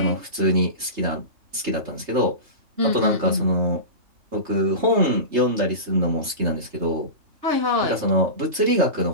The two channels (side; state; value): left; late; 3.3 ms